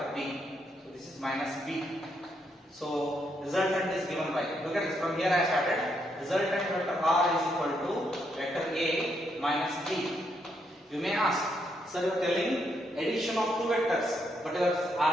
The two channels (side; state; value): both; normal; correlation 0.77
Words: B. So this is minus B. So resultant is given by, look at this, from here I started. Resultant vector R is equal to vector A minus B. You may ask, sir, you are telling addition of two vectors, but you are